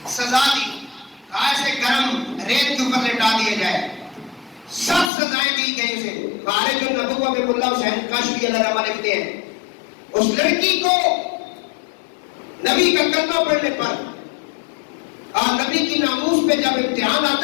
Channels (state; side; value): drops out; right; at 5.1 s